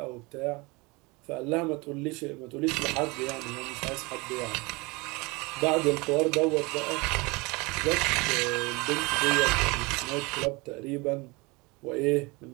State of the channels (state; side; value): quieter; left; 25.6 dB